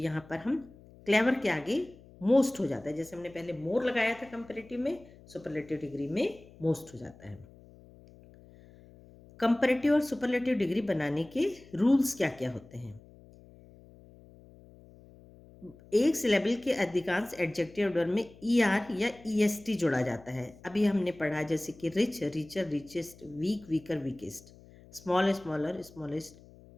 पर हम क्लेवर के आगे मोस्ट हो जाता है। जैसे हमने पहले मोर लगाया था कंपेरेटिव में, सुपरलेटिव डिग्री में मोस्ट हो जाता है। कंपेरेटिव और सुपरलेटिव डिग्री बनाने के रूल्स क्या क्या होते हैं? एक सिलेबल के अधिकांश एडजेक्टिव वर्ड में ई आर या ई एस टी जोड़ा जाता है। अभी हमने पढ़ा, जैसे कि rich, richer, richest, weak, weaker, weakest, small, smaller, smallest,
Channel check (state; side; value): noise; left; hum, 23 dB below the sound